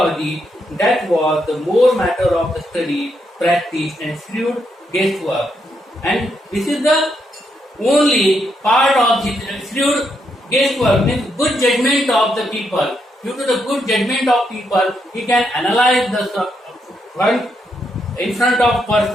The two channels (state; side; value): normal; both; correlation 0.79